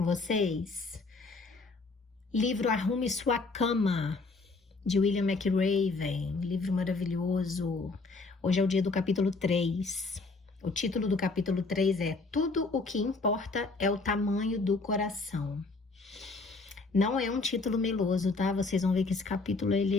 vocês? Livro Arrume Sua Cama, de William McRaven. Livro maravilhoso. Hoje é o dia do capítulo 3. O título do capítulo 3 é Tudo o que importa é o tamanho do coração. Não é um título meloso, tá? Vocês vão ver que esse capítulo,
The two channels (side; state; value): right; quieter; 3.7 dB